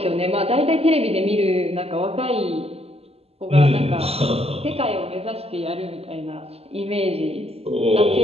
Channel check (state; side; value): late; left; 0.29 ms